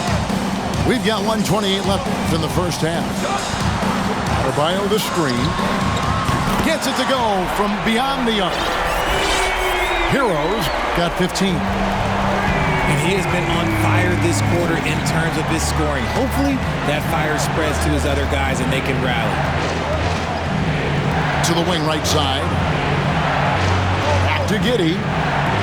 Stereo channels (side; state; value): both; identical; correlation 1.00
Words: We've got 1:28 left in the first half. Adebayo the screen. Gets it to go from beyond the arc. Heroes got 15. And he has been on fire this quarter in terms of his scoring. Hopefully that fire spreads to his other guys and they can rally. To the wing right side. Back to Giddey.